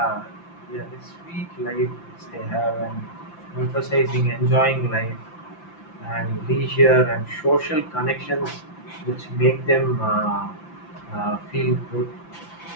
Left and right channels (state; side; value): late; right; 5.9 ms